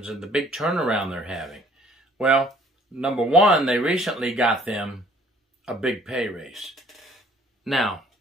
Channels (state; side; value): normal; both; correlation 0.57